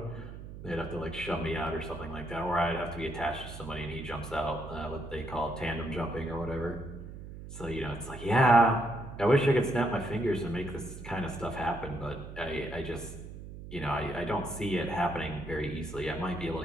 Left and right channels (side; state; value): right; noise; hum, 12 dB below the sound